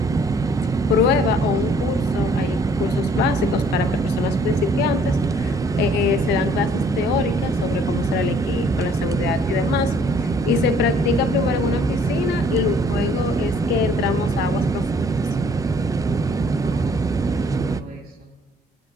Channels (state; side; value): normal; both; correlation 0.60